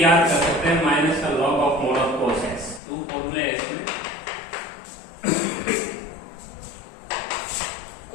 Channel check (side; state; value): right; drops out; at 2.8 s